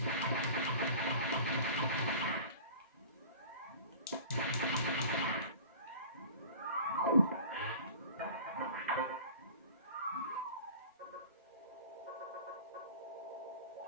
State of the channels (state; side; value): inverted; both; correlation -0.42